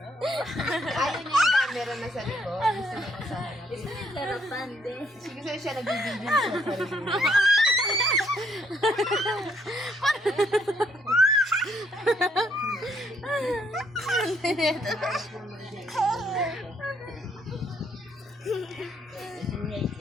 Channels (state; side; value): normal; both; correlation 0.69